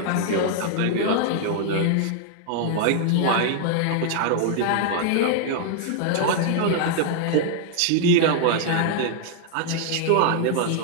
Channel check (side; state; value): both; different; correlation 0.00